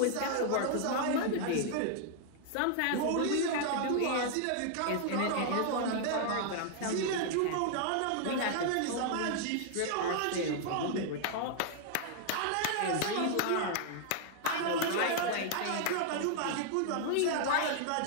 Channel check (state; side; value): different; both; correlation -0.01